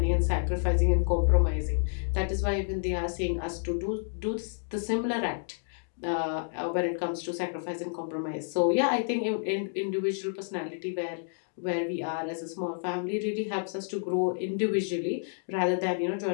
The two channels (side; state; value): right; silent; digital silence